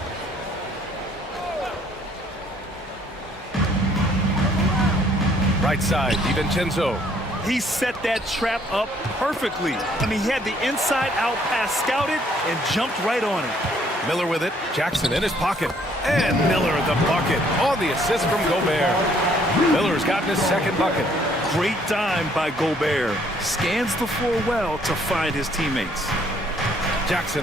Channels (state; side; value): normal; both; correlation 0.64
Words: Right side, DiVincenzo. He set that trap up perfectly. I mean, he had the inside-out pass scouted and jumped right on it. Miller with it. Jackson in his pocket. And Miller at the bucket on the assist from Gobert. Miller's gotten his second bucket. Great dime by Gobert. Scans the floor well to find his teammates.